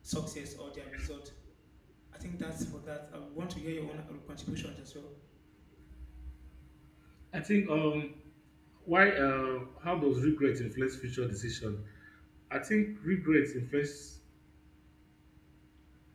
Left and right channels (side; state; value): both; identical; correlation 1.00